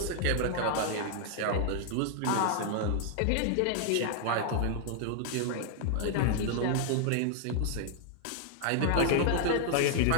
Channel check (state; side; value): different; both; correlation 0.00